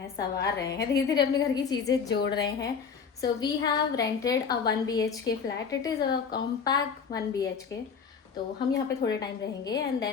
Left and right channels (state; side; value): quieter; right; 6.2 dB